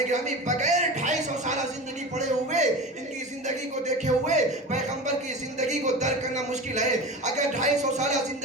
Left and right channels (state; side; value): normal; both; correlation 0.30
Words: گرامی، بغیر 250 سالہ زندگی پڑے ہوئے ان کی زندگی زندگی کو دیکھے ہوئے پیغمبر کی زندگی کو درک کرنا مشکل ہے. اگر 250 سالہ